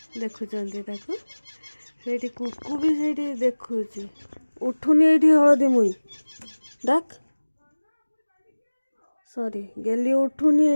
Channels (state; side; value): inverted; both; correlation -1.00